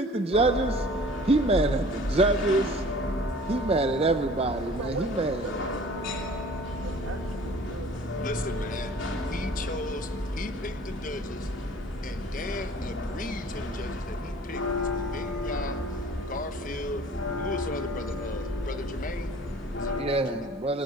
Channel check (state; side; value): normal; both; correlation 0.48